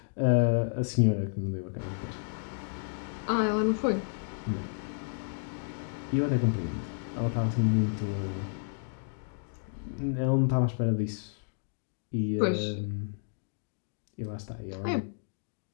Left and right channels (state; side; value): silent; right; digital silence